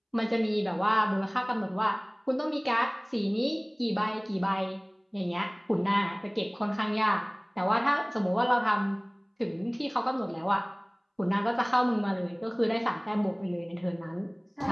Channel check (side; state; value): both; identical; correlation 1.00